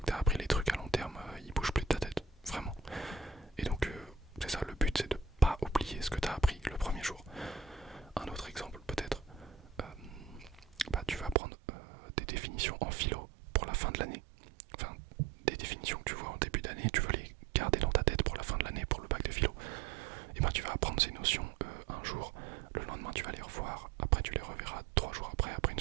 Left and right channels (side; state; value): left; drops out; at 11.4 s